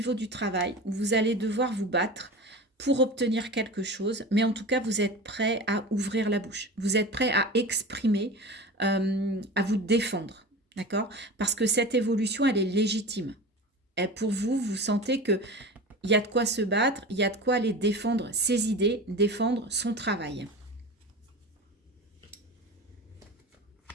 du travail où vous allez devoir vous battre pour obtenir quelque chose, mais en tout cas, vous êtes prêt à ouvrir la bouche. Vous êtes prêt à exprimer, à vous défendre, d'accord? Parce que cette évolution, elle est légitime. Et pour vous, vous sentez que il y a de quoi se battre, il y a de quoi aller défendre ses idées, défendre son travail.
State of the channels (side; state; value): both; normal; correlation 0.32